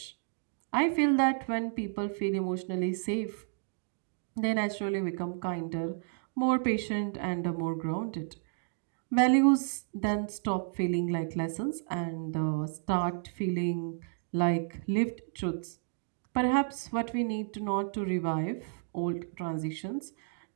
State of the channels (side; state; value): left; silent; digital silence